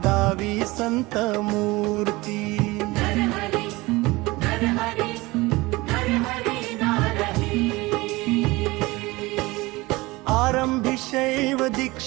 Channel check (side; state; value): left; quieter; 21.6 dB